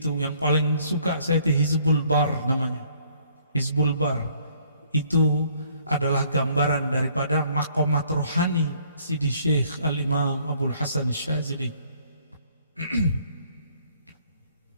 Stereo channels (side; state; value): both; inverted; correlation -0.62